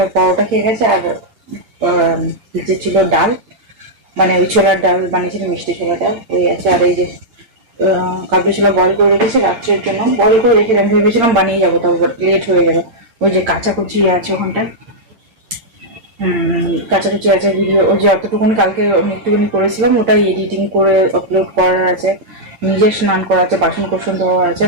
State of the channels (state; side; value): late; left; 8.4 ms